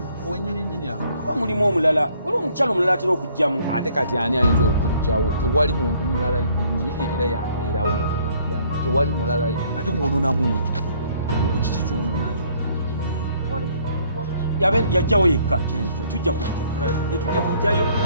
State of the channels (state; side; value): inverted; both; correlation -0.62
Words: wenyininyini awo kuba mulimu omulala waliwo omukyala omulala atera okujjamu ate kati ani ayinza okujjawo tewali muntu mulala nyini era yabeerawo tewali mulala ate kuononamuki mukiki kyononayo yajjawo yekka tujja kujjayo